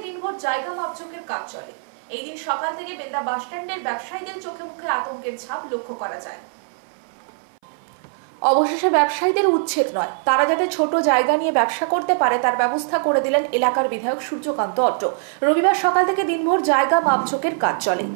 দিনভর জায়গা মাপজোকের কাজ চলে। এই দিন সকাল থেকে বেলদা বাসস্ট্যান্ডের ব্যবসায়ীদের চোখে মুখে আতঙ্কের ছাপ লক্ষ্য করা যায়। অবশেষে ব্যবসায়ীদের উচ্ছেদ নয়, তারা যাতে ছোট জায়গা নিয়ে ব্যবসা করতে পারে তার ব্যবস্থা করে দিলেন এলাকার বিধায়ক সূর্যকান্ত অট্ট। রবিবার সকাল থেকে দিনভর জায়গা মাপজোকের কাজ চলে।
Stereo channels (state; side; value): silent; left; 61 dB below the other